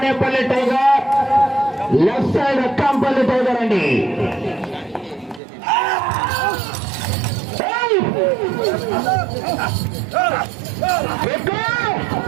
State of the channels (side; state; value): left; drops out; at 5.4 s